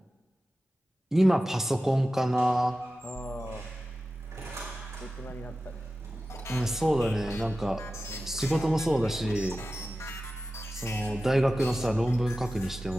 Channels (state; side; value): normal; both; correlation 0.94